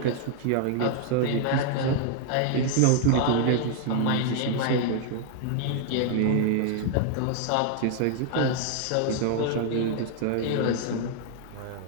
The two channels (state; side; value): different; both; correlation 0.00